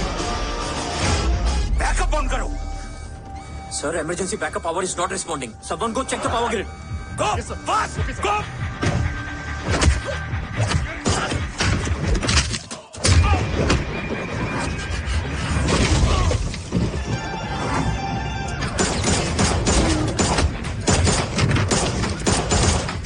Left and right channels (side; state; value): both; identical; correlation 1.00